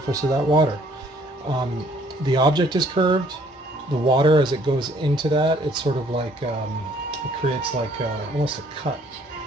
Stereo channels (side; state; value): both; normal; correlation 0.61